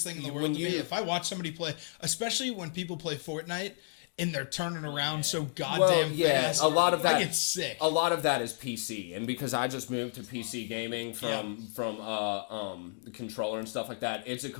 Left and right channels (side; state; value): right; silent; digital silence